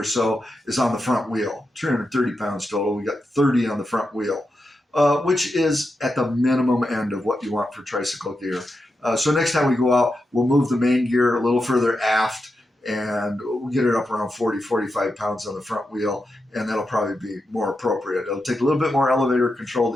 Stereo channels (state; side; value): normal; both; correlation 0.88